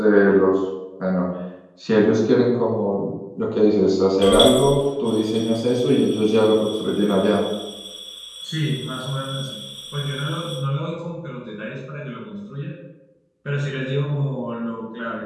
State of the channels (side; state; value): both; identical; correlation 1.00